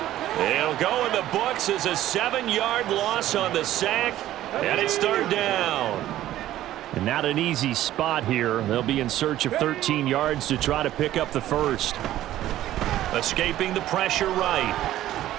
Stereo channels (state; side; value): quieter; left; 13.7 dB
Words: He'll go in the books as a 7-yard loss on the sack, and it's 3rd down. And not an easy spot here. They'll be in search of 13 yards to try to pick up the first. Escaping the pressure right.